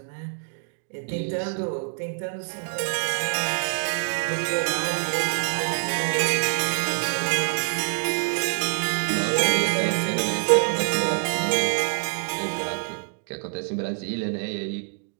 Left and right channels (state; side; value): silent; left; digital silence